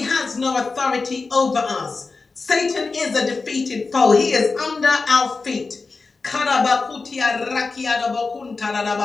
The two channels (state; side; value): quieter; right; 4.1 dB